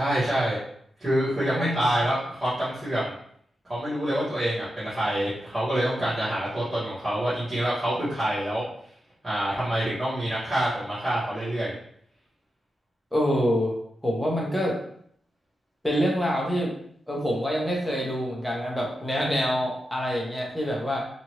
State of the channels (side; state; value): both; normal; correlation 0.88